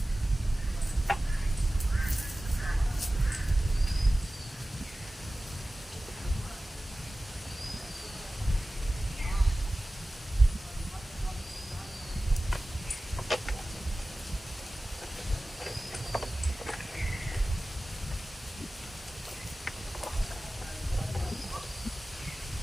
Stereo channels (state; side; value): normal; both; correlation 0.96